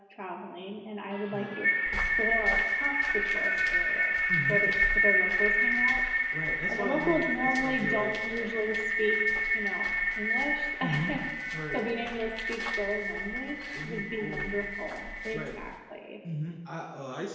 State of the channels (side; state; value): both; identical; correlation 1.00